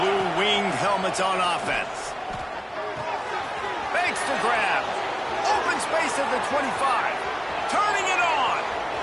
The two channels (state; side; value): identical; both; correlation 1.00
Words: winged helmets on offense. Makes the grab. Open space at the 25. Turning it on.